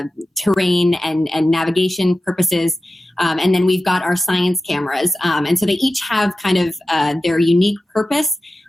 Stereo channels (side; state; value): both; normal; correlation 0.94